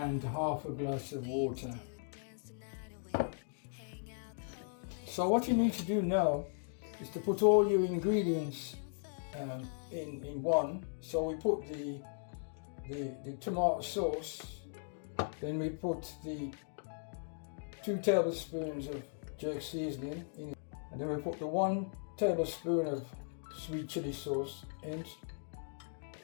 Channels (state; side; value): silent; right; digital silence